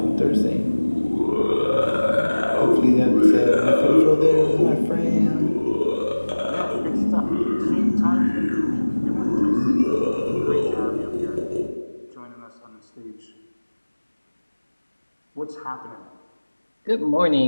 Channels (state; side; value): inverted; both; correlation -1.00